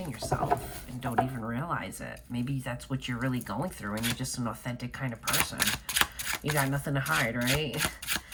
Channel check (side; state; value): both; identical; correlation 1.00